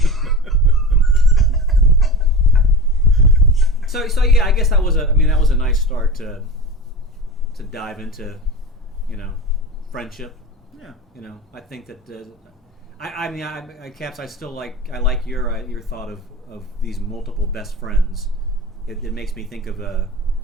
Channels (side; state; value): both; normal; correlation 0.31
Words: So yeah, I guess that was a nice start to dive into, friendship. Yeah. I think that Caps, I still like your thought of these multiple best friends. It makes me think of